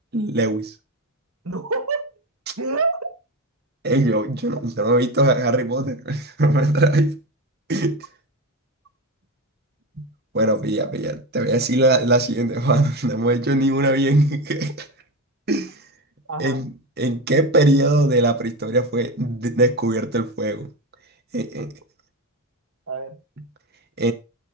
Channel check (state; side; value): normal; both; correlation 0.21